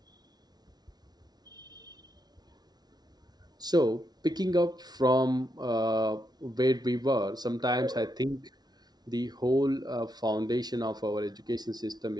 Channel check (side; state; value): left; late; 0.19 ms